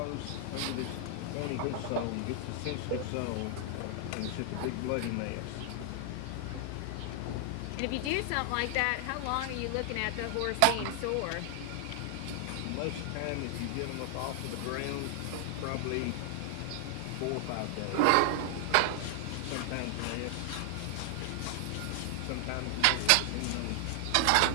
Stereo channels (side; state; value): both; different; correlation 0.00